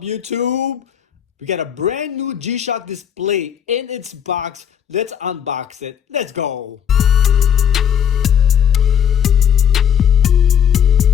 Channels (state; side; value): quieter; right; 8.7 dB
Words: YouTube? We got a brand new G-Shock display in its box. Let's unbox it. Let's go.